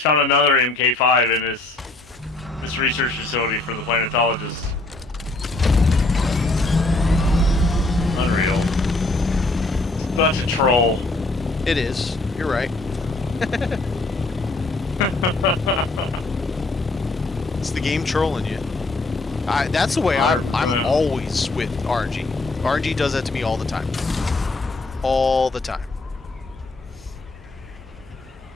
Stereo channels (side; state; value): right; quieter; 3.1 dB